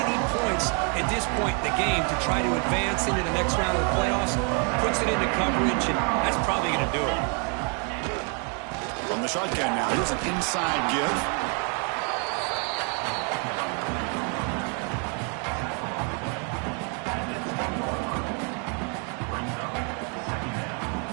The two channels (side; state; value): left; quieter; 38.0 dB